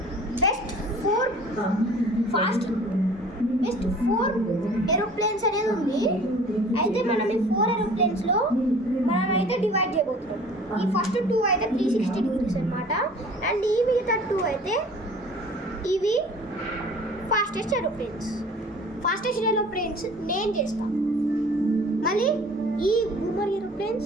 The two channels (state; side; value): normal; both; correlation 0.48